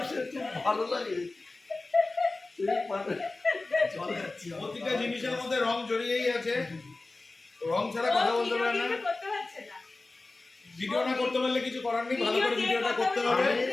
খুব ভালো লাগে, প্রতিটা জিনিসের মধ্যে রং জড়িয়েই আছে, রং ছাড়া কথা বলতে পারে না। ভিডিও না করতে পারলে কিছু করার নেই, ভালো করে ভিডিওটা করতে হবে।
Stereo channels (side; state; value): right; quieter; 3.3 dB